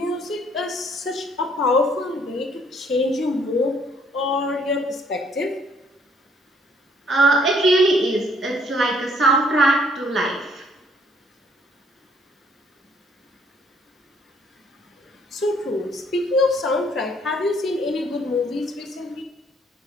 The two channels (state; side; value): normal; both; correlation 0.64